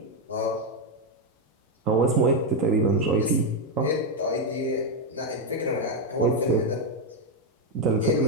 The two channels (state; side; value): normal; both; correlation 0.03